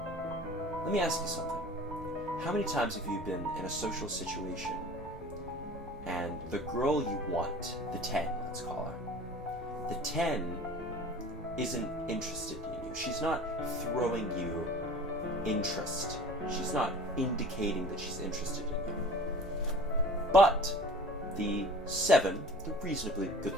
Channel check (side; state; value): both; normal; correlation 0.43